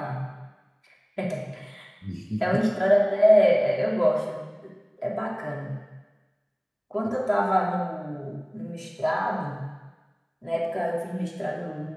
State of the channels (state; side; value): identical; both; correlation 1.00